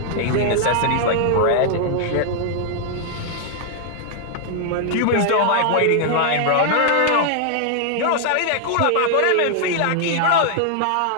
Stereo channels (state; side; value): different; both; correlation -0.01